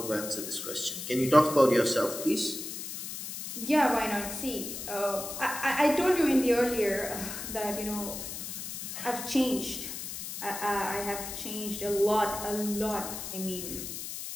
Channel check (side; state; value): left; noise; hiss, 7 dB below the sound